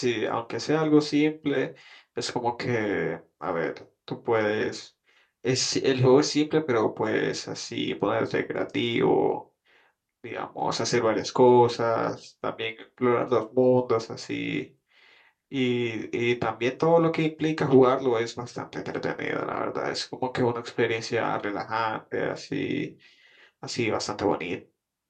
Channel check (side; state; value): both; identical; correlation 1.00